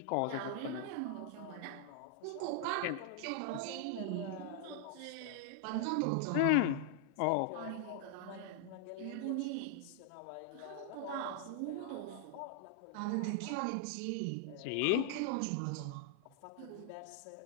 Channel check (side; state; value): both; different; correlation -0.01